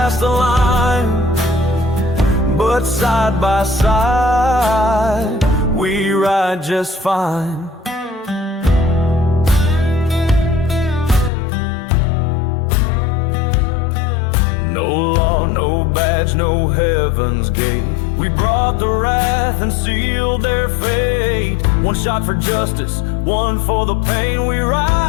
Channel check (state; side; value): drops out; right; at 11.3 s